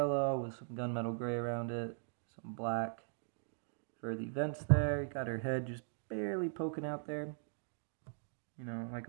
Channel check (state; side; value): silent; left; digital silence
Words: with some gunmetal gray around it, some black for the vents there. You got her head just barely poking out there, you know, like